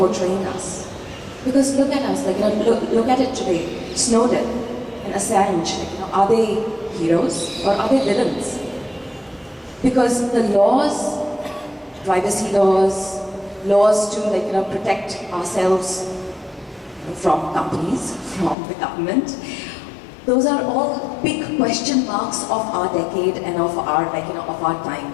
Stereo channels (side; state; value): right; drops out; at 18.6 s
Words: us? Because look at us, look at it today. Snowden and Assange, are they heroes or are they villains? Because the laws, privacy laws, laws to protect ourselves from companies, from the government, those are all big question marks of our decade and of our of our